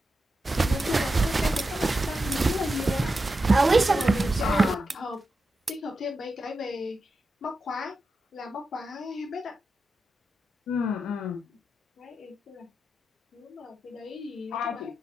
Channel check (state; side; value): normal; both; correlation 0.90